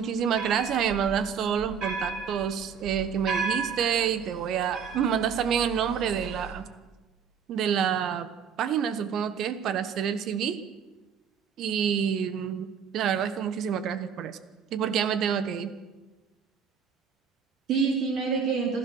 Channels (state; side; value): quieter; left; 7.2 dB